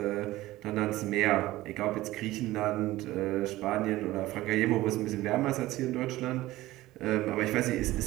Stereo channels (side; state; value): left; quieter; 17.1 dB